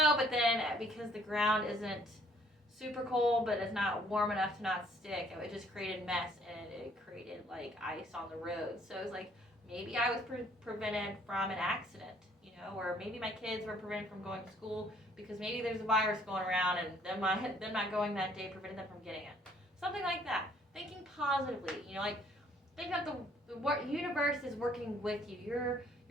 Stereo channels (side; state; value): both; normal; correlation 0.62